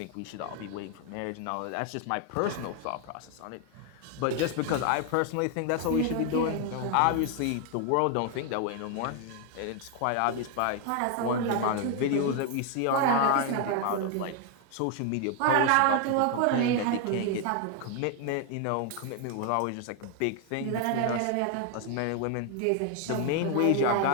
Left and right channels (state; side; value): different; both; correlation 0.01